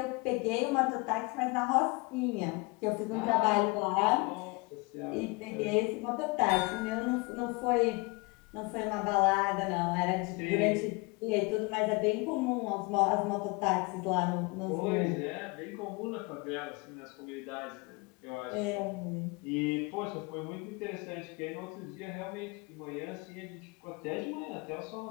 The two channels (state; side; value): quieter; right; 27.2 dB